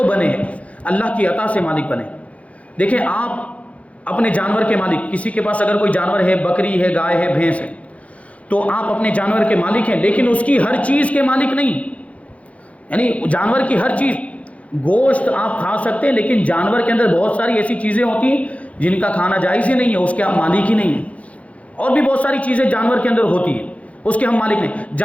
بنے، اللہ کی عطا سے مالک بنے۔ دیکھیں آپ اپنے جانور کے مالک، کسی کے پاس اگر کوئی جانور ہے، بکری ہے، گائے ہے، بھینس ہے، تو آپ اپنے جانور کے مالک ہیں، لیکن اس کی ہر چیز کے مالک نہیں، یعنی جانور کی ہر چیز، گوشت آپ کھا سکتے ہیں لیکن جانور کے اندر بہت ساری ایسی چیزیں ہوتی ہیں جن کا کھانا جائز ہی نہیں ہے، اس کے آپ مالک ہی نہیں ہیں۔ اور بھی بہت ساری چیزیں جانور کے اندر ہوتی ہیں، اس کے ہم مالک نہیں۔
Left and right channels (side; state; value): right; late; 0.065 ms